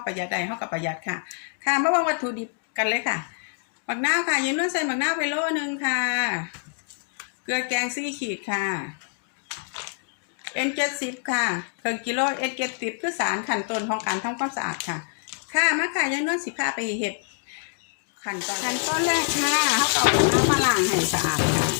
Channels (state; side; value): silent; right; 61 dB below the other